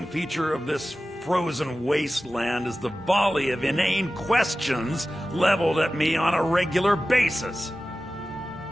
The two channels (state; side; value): normal; both; correlation 0.95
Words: feature of this frozen wasteland is the volley of inane questions leveled at me on a regular basis.